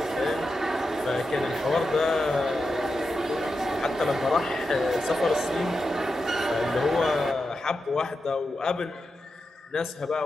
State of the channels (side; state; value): both; normal; correlation 0.89